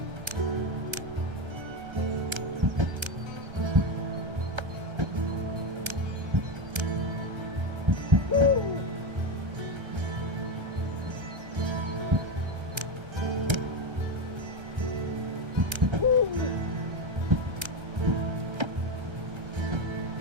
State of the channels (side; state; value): left; late; 1.3 ms